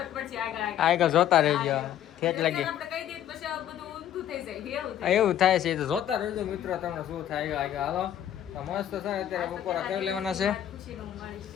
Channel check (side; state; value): right; quieter; 10.9 dB